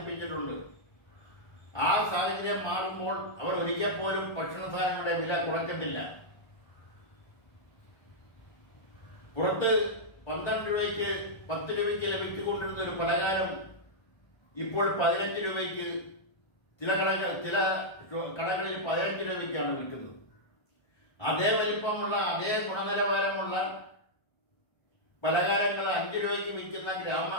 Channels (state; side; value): late; right; 1.3 ms